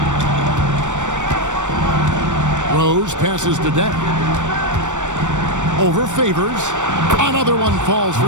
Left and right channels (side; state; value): left; late; 0.85 ms